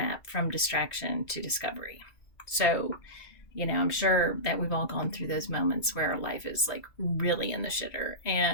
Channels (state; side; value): late; right; 2.5 ms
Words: from distraction to discovery. So, I'm sure that we've all gone through those moments where our life is like really in the shitter,